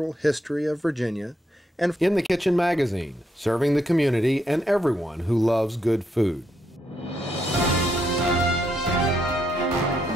history of Virginia, and In the Kitchen magazine, serving the community and everyone who loves good food.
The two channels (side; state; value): both; normal; correlation 0.78